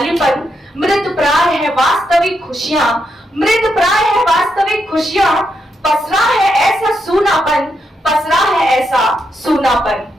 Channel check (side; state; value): both; normal; correlation 0.82